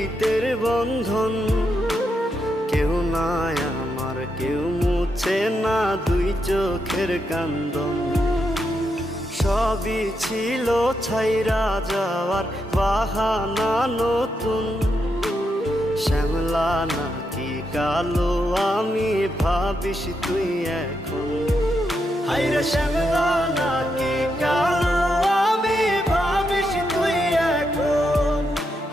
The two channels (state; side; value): normal; both; correlation 0.83